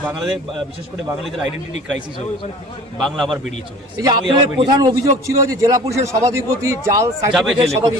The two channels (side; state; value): both; normal; correlation 0.44